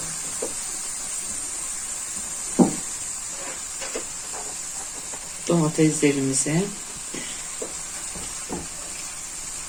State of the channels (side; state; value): both; identical; correlation 1.00